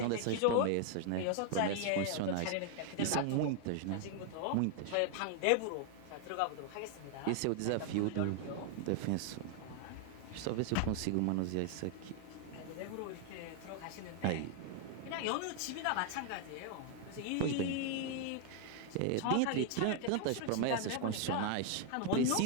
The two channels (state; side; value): different; both; correlation 0.00